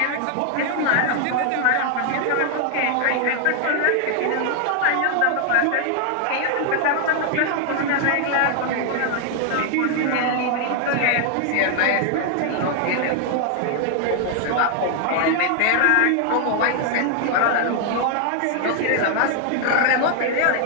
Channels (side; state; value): both; different; correlation 0.00